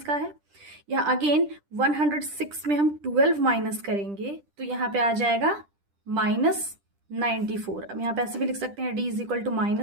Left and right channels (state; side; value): late; left; 10 ms